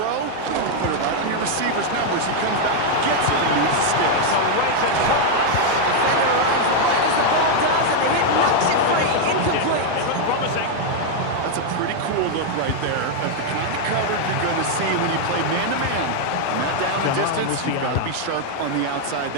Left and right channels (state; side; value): different; both; correlation 0.00